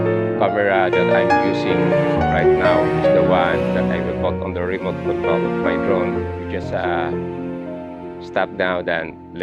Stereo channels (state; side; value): identical; both; correlation 1.00